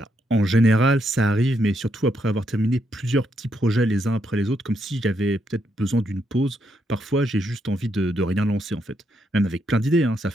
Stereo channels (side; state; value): both; normal; correlation 0.78